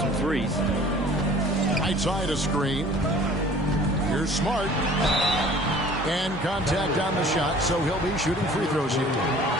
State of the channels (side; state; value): both; normal; correlation 0.49